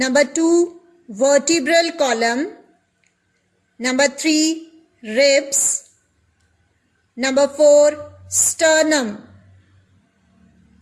2, vertebral column; number 3, ribs; number 4, sternum.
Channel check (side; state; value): both; identical; correlation 1.00